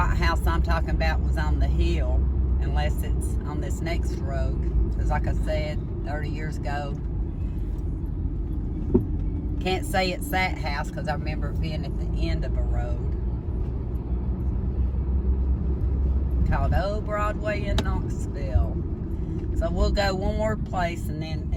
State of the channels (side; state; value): both; identical; correlation 1.00